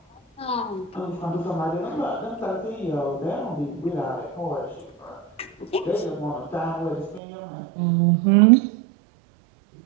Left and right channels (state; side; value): drops out; left; at 7.2 s